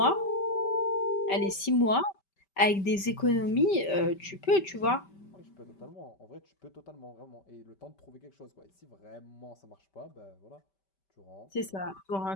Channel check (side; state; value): right; late; 5.2 ms